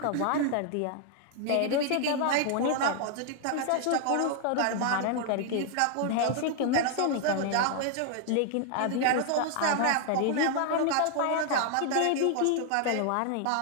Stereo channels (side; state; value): both; different; correlation 0.00